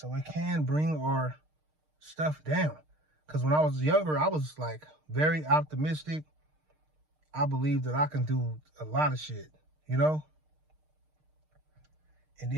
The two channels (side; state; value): left; late; 6.5 ms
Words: it can bring our stuff down. Because when I was younger, I was like very optimistic. I believe that I can do a lot of shit, you know? And